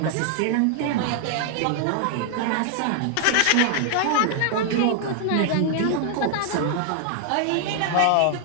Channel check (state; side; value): different; both; correlation 0.00